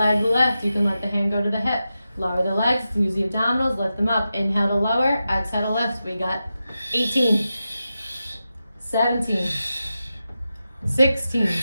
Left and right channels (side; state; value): both; inverted; correlation -0.91